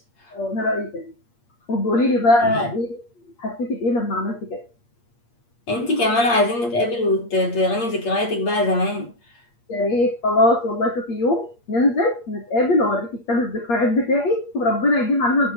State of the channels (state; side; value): late; right; 8.5 ms